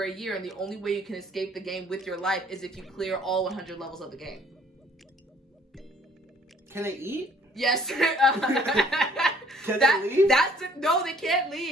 a year, and the only way you can escape the game with your life is if you clear all 100 levels of the game. Can they eat? Yes. Can they leave? No, they can't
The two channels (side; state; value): both; normal; correlation 0.59